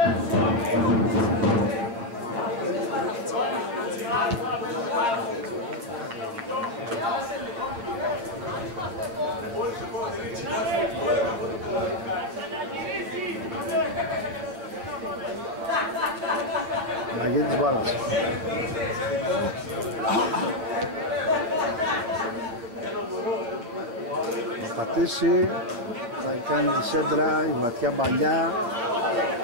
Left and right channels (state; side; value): late; left; 8.6 ms